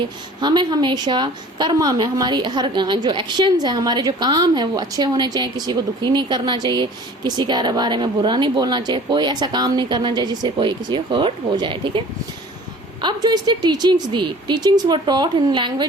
हमें हमेशा कर्मा में, हमारी हर जो एक्शंस है, हमारे जो काम है वो अच्छे होने चाहिए. किसी को दुखी नहीं करना चाहिए, किसी के बारे में बुरा नहीं बोलना चाहिए, कोई ऐसा काम नहीं करना चाहिए जिससे कोई किसी को हर्ट हो जाए. ठीक है. अब जो इसने teachings the, teachings were taught in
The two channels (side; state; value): both; normal; correlation 0.46